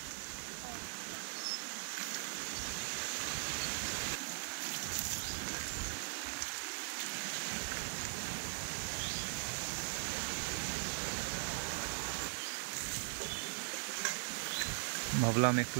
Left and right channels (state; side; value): silent; left; digital silence